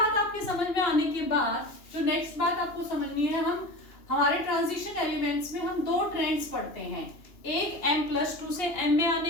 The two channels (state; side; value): late; right; 2.9 ms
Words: आपके समझ में आने के बाद जो नेक्स्ट बात आपको समझनी है, हम हमारे ट्रांजिशन एलिमेंट्स में हम दो ट्रेंड्स पढ़ते हैं, एक M+2 से M में